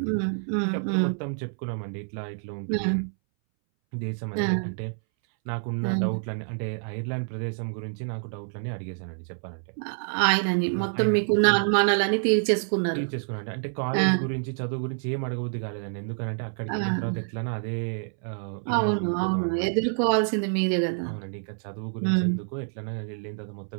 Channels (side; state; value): left; silent; 60 dB below the other